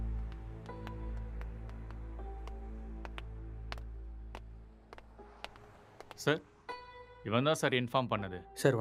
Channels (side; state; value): both; identical; correlation 1.00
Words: சார் இவன் தான் சார் இன்ஃபார்ம் பண்ணது. சார்